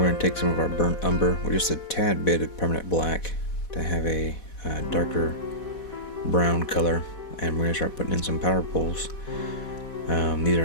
going to take some of our burnt umber with just a tad bit of permanent black to have a darker brown color, and we're going to start putting in some power poles. These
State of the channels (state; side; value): late; right; 4.1 ms